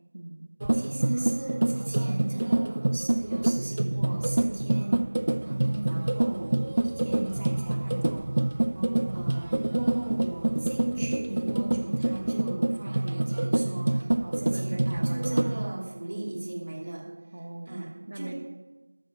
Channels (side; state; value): both; inverted; correlation -1.00